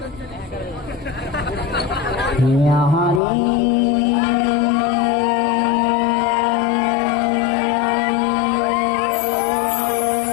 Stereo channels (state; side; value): drops out; right; at 3.2 s